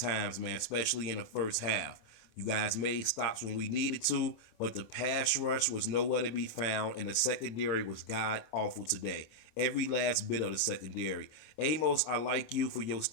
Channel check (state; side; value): late; right; 26 ms